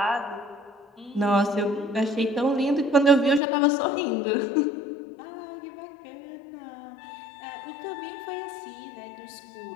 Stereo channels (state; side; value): drops out; right; at 3.4 s